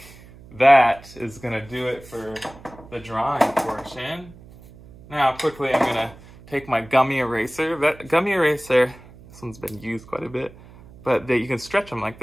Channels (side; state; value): right; noise; hum, 21 dB below the sound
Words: that is gonna do it for the drawing portion. Now, quickly, I'm gonna take my gummy eraser. That gummy eraser, this one's been used quite a bit, but you can stretch them like